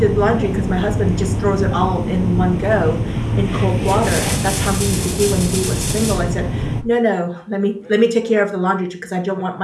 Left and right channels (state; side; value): identical; both; correlation 1.00